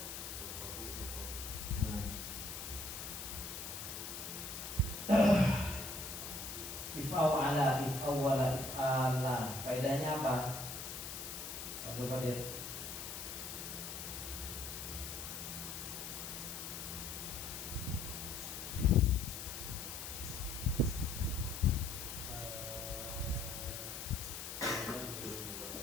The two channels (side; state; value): left; noise; hiss, 7 dB below the sound